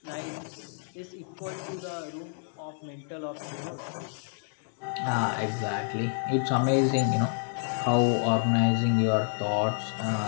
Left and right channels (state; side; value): silent; right; digital silence